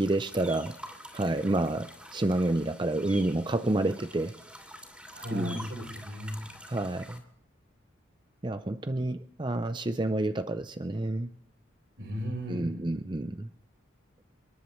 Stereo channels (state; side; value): normal; both; correlation 0.79